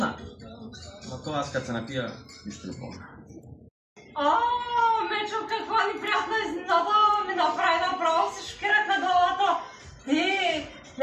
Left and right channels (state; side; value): identical; both; correlation 1.00